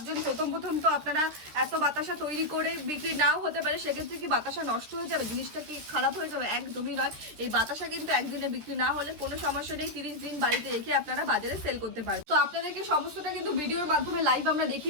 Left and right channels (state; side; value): late; left; 13 ms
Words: প্রথম তো আপনারা এত বাতাসা তৈরি করে বিক্রি নাও হতে পারে, সেক্ষেত্রে কি বাতাসা নষ্ট হয়ে যাবে, জিনিসটা কি খারাপ হয়ে যাবে? একদমই নয়। এই বাতাসা কিন্তু একদিনে বিক্রি না হলে কোনো সমস্যা নেই, 30 দিন বাড়িতে রেখে আপনারা বাজারে সেল করতে পারেন। তো আপনাদেরকে সমস্তটা কিন্তু ভিডিওর মাধ্যমে লাইভ আমরা